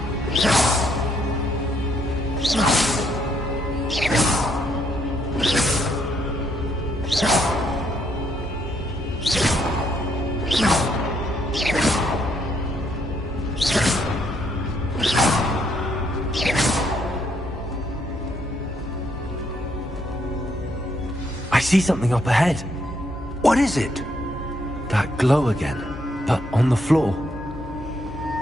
I see something up ahead. What is it? That glow again, but on the floor.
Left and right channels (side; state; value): both; normal; correlation 0.72